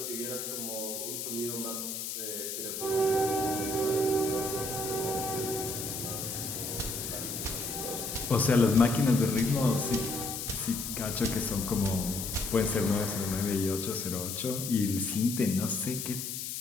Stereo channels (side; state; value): left; noise; hiss, 5 dB below the sound